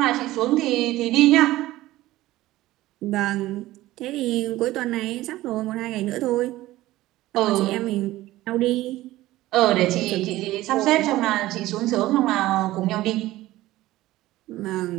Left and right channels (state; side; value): quieter; left; 16.7 dB